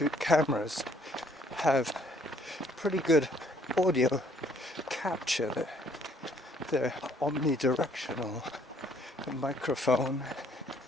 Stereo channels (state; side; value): normal; both; correlation 0.64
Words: cameras have pretty good audio capture. They're omnidirectional. A microphone,